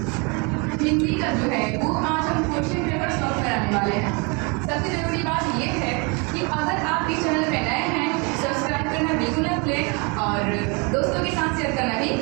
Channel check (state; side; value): quieter; left; 31.3 dB